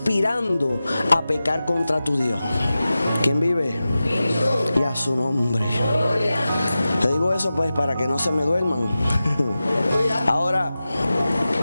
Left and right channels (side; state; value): both; inverted; correlation -0.94